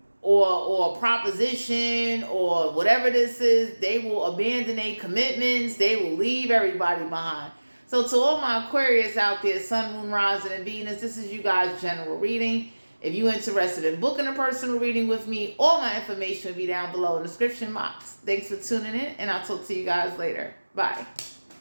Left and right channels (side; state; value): both; inverted; correlation -1.00